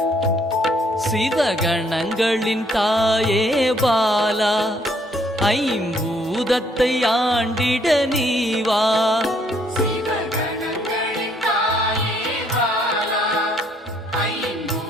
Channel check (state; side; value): normal; both; correlation 0.67